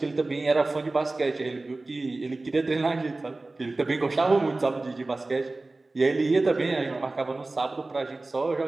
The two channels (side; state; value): left; quieter; 3.1 dB